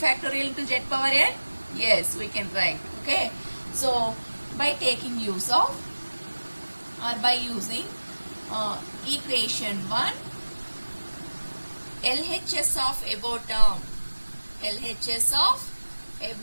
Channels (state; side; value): inverted; both; correlation -1.00